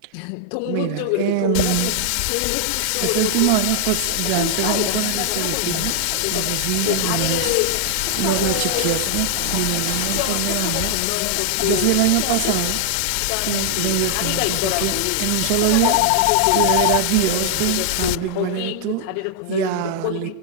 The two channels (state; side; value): different; both; correlation -0.01